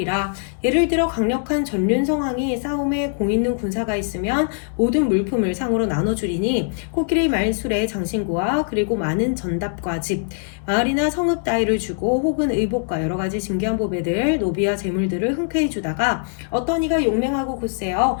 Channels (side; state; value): right; silent; 61 dB below the other